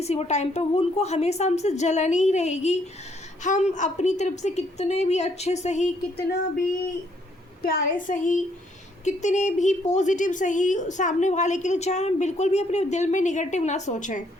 वो टाइम पे, वो उनको हमेशा हमसे जलन ही रहेगी। हम अपनी तरफ से कितने भी अच्छे सही, कितना भी प्यारे सही, कितने भी पॉजिटिव सही सामने वाले के लिए चाहे हम बिल्कुल भी अपने दिल में निगेटिव ना सोचें,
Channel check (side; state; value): both; normal; correlation 0.69